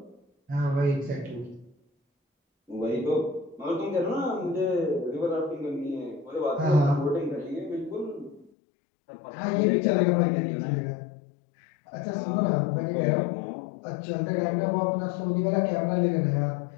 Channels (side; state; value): right; drops out; at 8.5 s